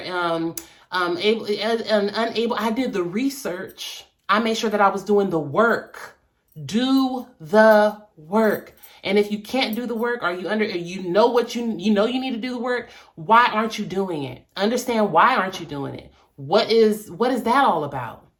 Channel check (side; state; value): both; identical; correlation 1.00